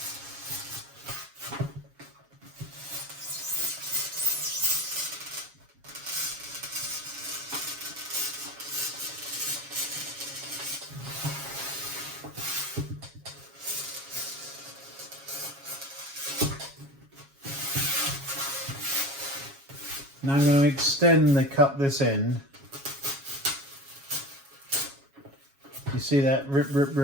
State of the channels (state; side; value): late; left; 7.3 ms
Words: Now I'm going to extend the cut this end. You see that rip, rip,